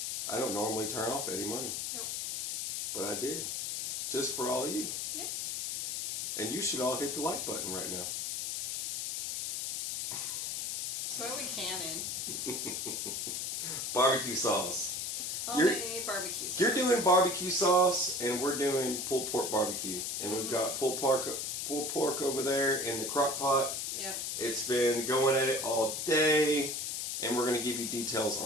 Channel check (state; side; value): noise; left; hiss, 2 dB below the sound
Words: I don't normally turn off Eddie Money. Nope. But I did. Just for all of you. Yep. And you should all hit the like button right now. That's what we cannon. Barbecue sauce. Homemade barbecue sauce. You're doing barbecue sauce, and we're doing pulled pork barbecue. And we've got pulled pork over there in the crock pot. Yep. It's been going at it all day, and we're going to give you details